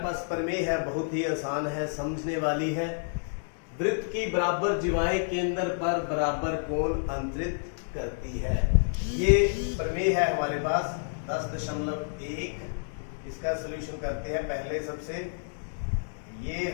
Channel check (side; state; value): right; silent; digital silence